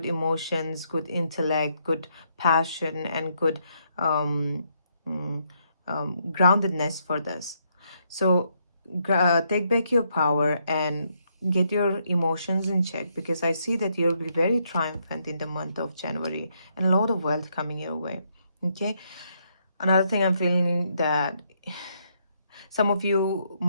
emotions, good intellect, good passion, and good groundedness for this. So take back your power and get your emotions in check, because I see that you'll be very triumphant in the month of January, and a lot of wealth coming your way. Okay, another thing I'm feeling that some of you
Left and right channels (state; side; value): inverted; both; correlation -0.75